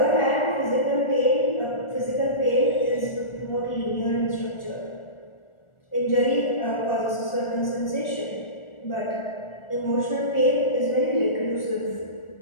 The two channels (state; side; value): late; right; 1.4 ms